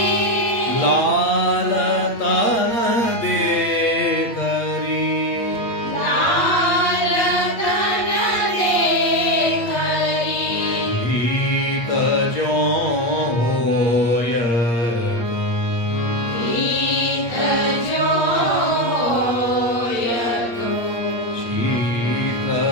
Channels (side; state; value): right; late; 8.6 ms